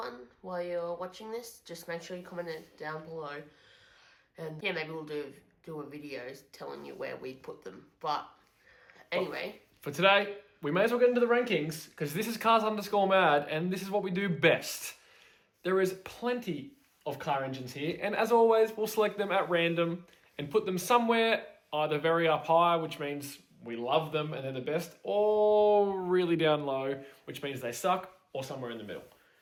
while you're watching this, just make sure you comment it down below. And yeah, maybe we'll do a video telling you where we put them. But anyway. For today, we may as well get into the rankings because this is Cars_Mad and this is what we do best. There is plenty of car engines here, and as always, we'll select them at random and put them somewhere either very up high, which means we love them and they're the best, or really down low, which means they suck, or somewhere in the middle.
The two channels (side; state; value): both; identical; correlation 1.00